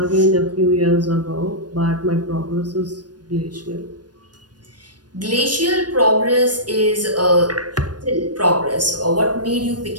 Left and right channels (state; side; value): late; left; 0.69 ms